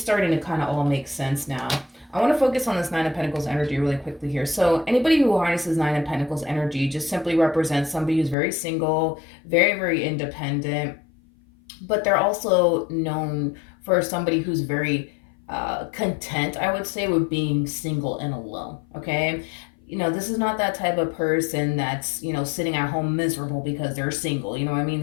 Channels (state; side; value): drops out; right; at 8.3 s